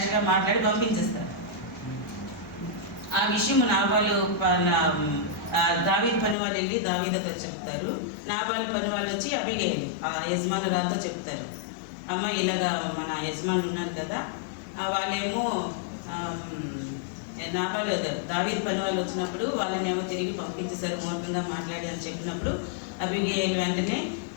మాట్లాడి పంపించేస్తారు. ఆ విషయం నాబాలు దావీదు పని వాళ్ళు వెళ్ళి దావీదుతో చెప్తారు. నాబాలు పని వాళ్ళు వచ్చి అబిగయీలు ఆ యజమానురాలతో చెప్తారు, అమ్మ ఇలాగా మన యజమానులు ఉన్నారు కదా, వాళ్ళేమో నాబాలు దావీదు పని వాళ్ళు వచ్చినప్పుడు వాళ్ళనేమో తిరిగి పంపించేశారు మూర్ఖంగా మాట్లాడి అని చెప్పినప్పుడు అబిగయీలు వెంటనే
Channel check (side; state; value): right; drops out; at 6.4 s